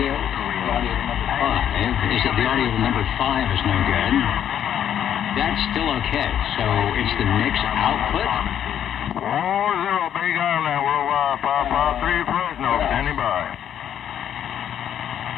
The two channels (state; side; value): quieter; right; 9.8 dB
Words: The audio to number 5. Is it the audio to number 5 is no good? That's still okay. So it's the mix output. 40 Big Island, Worldwide 553 Fresno, standing by.